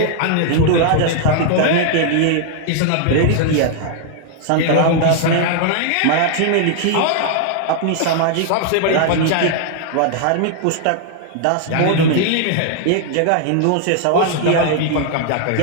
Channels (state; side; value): different; both; correlation 0.00